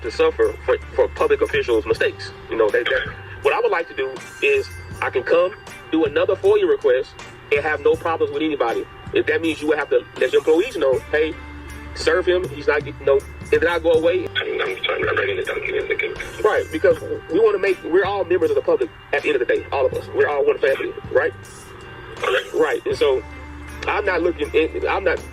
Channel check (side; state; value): both; identical; correlation 1.00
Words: to suffer for public officials' mistakes. You know, what I would like to do is I can come do another FOIA request and have no problems with anybody. If that means you would have to let your employees know, hey, serve him. He's not getting no. And then I go away. I'm writing it down. Right, because we want to make. We're all members of the public at the end of the day. All of us. We're all one family, right? Right. And so I'm not looking. I'm not.